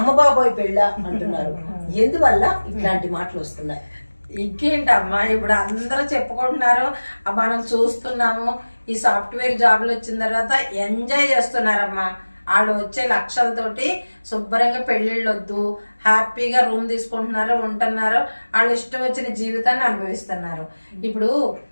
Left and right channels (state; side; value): inverted; both; correlation -1.00